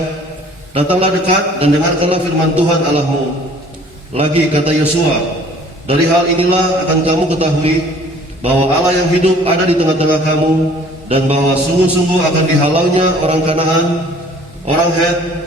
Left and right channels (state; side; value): normal; both; correlation 0.53